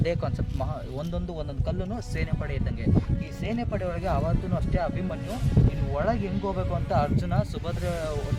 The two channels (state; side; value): identical; both; correlation 1.00